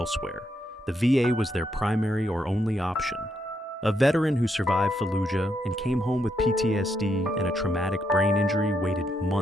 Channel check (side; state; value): both; normal; correlation 0.78